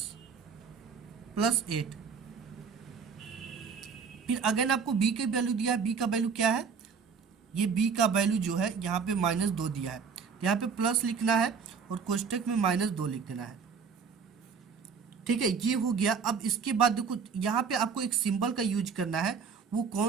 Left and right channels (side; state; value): left; quieter; 5.9 dB